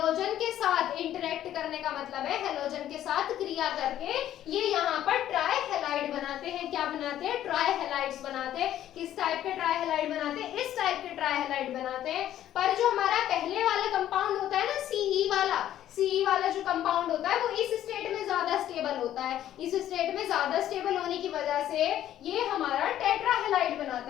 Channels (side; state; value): right; quieter; 12.0 dB